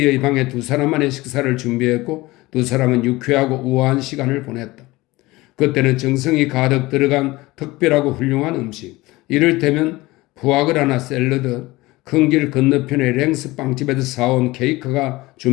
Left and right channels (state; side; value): quieter; right; 20.2 dB